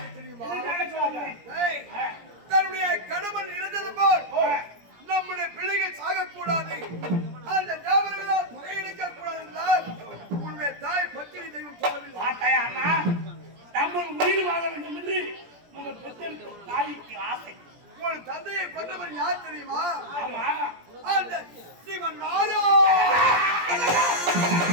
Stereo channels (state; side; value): late; left; 17 ms